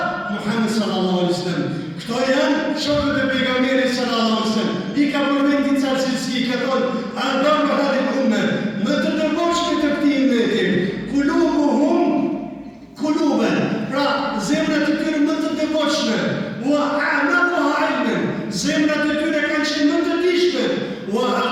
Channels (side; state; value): both; identical; correlation 1.00